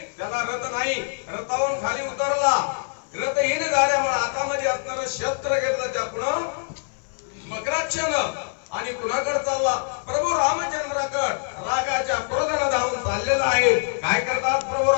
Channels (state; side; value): silent; right; 57 dB below the other